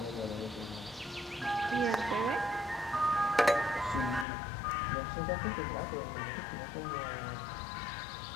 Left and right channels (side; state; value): right; drops out; at 4.2 s